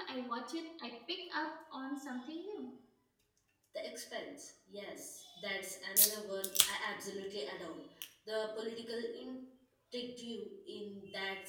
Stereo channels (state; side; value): identical; both; correlation 1.00